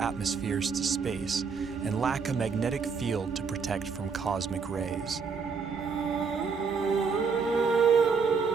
to space and lack a magnetic field to protect from cosmic rays.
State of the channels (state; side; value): quieter; left; 5.5 dB